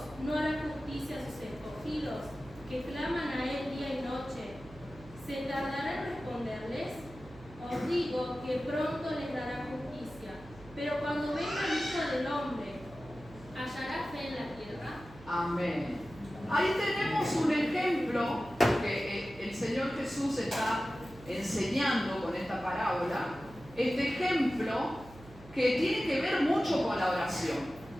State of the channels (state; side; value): noise; right; hum, 19 dB below the sound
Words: no hará justicia a sus escogidos, que claman a Él día y noche? ¿Se tardará en responderles? Os digo que pronto les dará justicia. Pero cuando venga el Hijo del Hombre, ¿hallará fe en la tierra? Amén. Ahí tenemos un ejemplo que el Señor Jesús está enseñando con esta parábola. Este ejemplo que tiene que ver mucho con la oración.